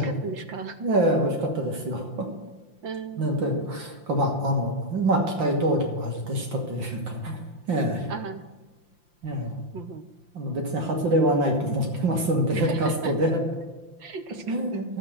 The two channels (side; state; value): left; late; 5.8 ms